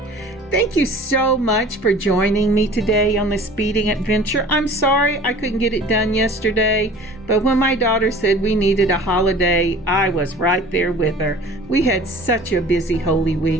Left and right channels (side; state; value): both; normal; correlation 0.45